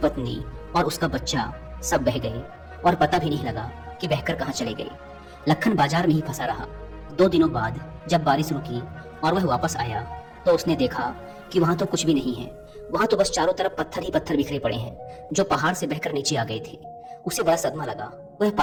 और उसका बच्चा सब बह गए और पता भी नहीं लगा कि बहकर कहाँ चले गए। लखन बाजार में ही फंसा रहा। 2 दिनों बाद जब बारिश रुकी और वह वापस आया तो उसने देखा कि वहां तो कुछ भी नहीं है। वहां तो बस चारों तरफ पत्थर ही पत्थर बिखरे पड़े हैं जो पहाड़ से बहकर नीचे आ गए थे। उसे बड़ा सदमा लगा। वह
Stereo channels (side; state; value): both; identical; correlation 1.00